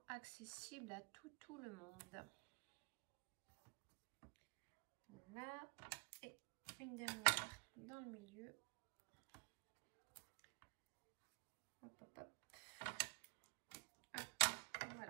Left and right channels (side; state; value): left; quieter; 34.3 dB